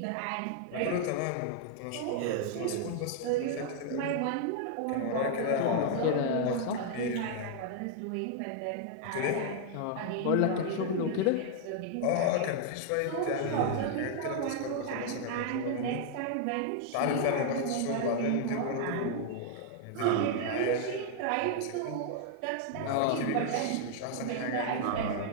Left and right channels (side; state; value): both; different; correlation 0.00